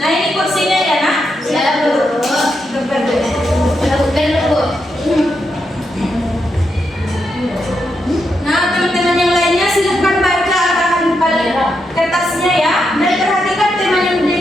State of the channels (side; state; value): both; normal; correlation 0.83